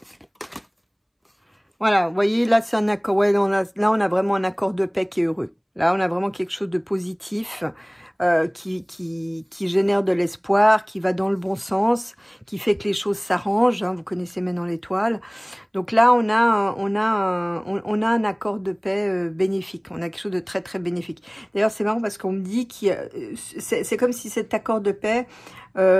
Voilà, vous voyez, là, c'est un accord. Ouais, là, on a vraiment un accord de paix qui est heureux. Là, on a vraiment quelque chose de positif qui génère de l'espoir, qui va dans le bon sens, qui fait que les choses s'arrangent. Hein, vous connaissez maintenant l'étoile. Donc là, on a un accord de paix bénéfique. On a quelque chose de très bénéfique. D'ailleurs, c'est marrant parce qu'on me dit que c'est comme si cet accord de paix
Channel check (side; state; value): both; identical; correlation 1.00